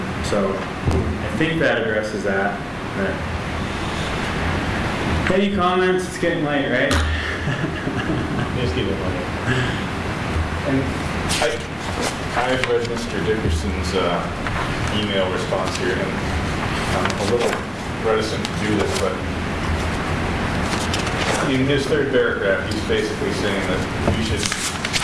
So I think that addresses that. Any comments? It's getting late, right? Just keep it late. And I've read Mr. Dickerson's email response here, and I'm a little reticent to do this, but in his third paragraph, he's basically saying that we should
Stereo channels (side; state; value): both; identical; correlation 1.00